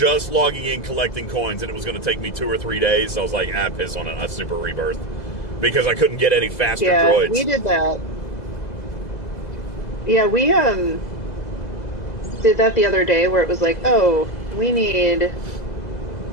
in, collecting coins, and it was going to take me 2 or 3 days. So I was like, piss on it, a Super Rebirth. Because I couldn't get any faster droids. We did that. Yeah, we did that the other day where it was like, oh, we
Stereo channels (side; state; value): right; late; 2.0 ms